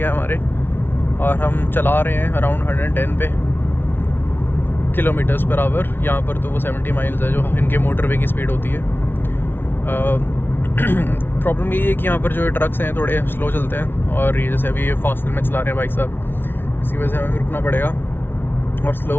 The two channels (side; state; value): right; late; 0.11 ms